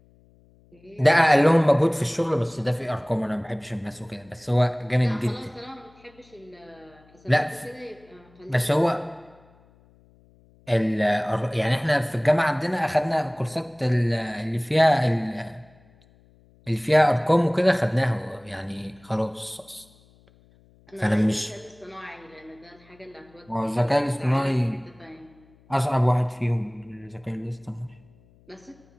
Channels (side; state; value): left; noise; hum, 30 dB below the sound